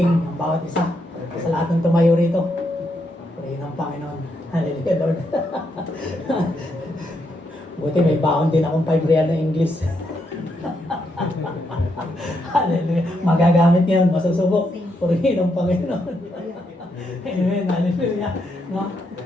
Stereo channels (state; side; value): normal; both; correlation 0.79